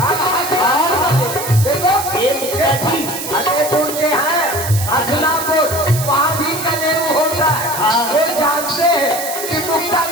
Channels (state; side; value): noise; right; hiss, 7 dB below the sound